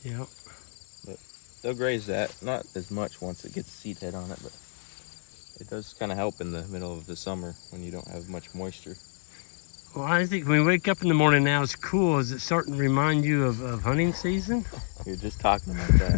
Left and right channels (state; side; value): silent; right; digital silence